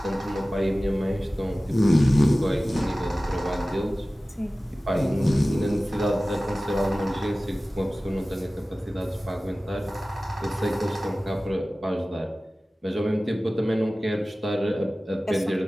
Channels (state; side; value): normal; both; correlation 0.97